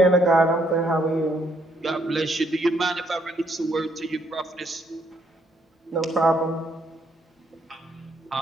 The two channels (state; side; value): normal; both; correlation 0.71